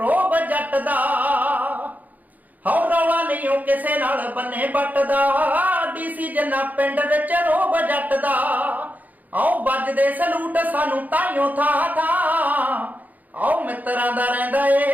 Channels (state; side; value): late; left; 0.080 ms